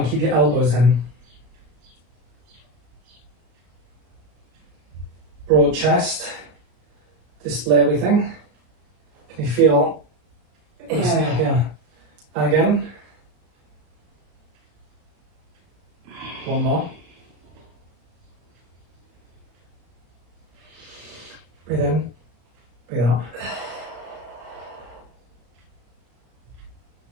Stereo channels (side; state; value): left; late; 33 ms